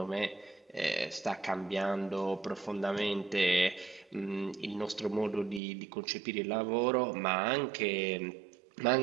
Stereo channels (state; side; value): drops out; left; at 5.6 s